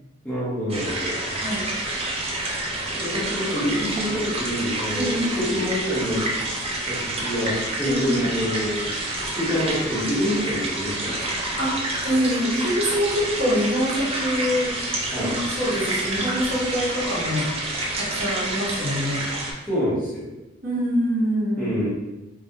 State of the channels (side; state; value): both; normal; correlation 0.42